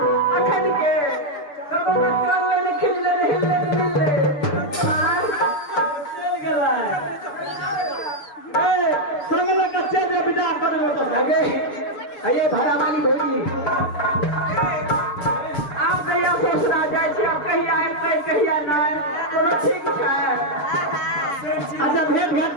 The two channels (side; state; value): right; late; 6.8 ms